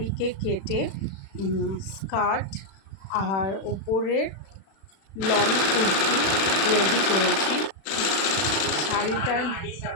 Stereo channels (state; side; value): late; right; 36 ms